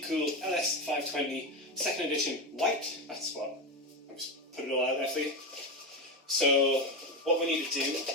LS520 2nd edition white. That's what, I'm just putting it all out there for you. So what we need to do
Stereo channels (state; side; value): normal; both; correlation 0.15